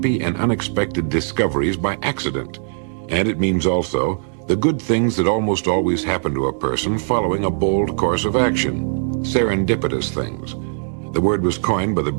and unexpected discoveries by accident. And it means also the good things that almost always happen to a person following a bold course of action, serendipitous things. The word was coined by the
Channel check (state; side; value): silent; left; 66 dB below the other